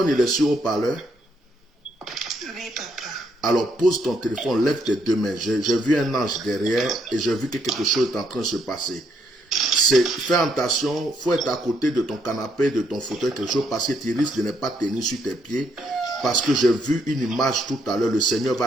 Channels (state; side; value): normal; both; correlation 0.73